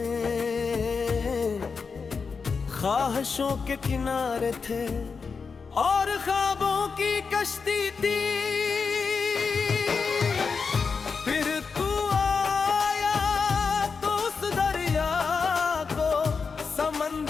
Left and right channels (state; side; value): quieter; right; 5.2 dB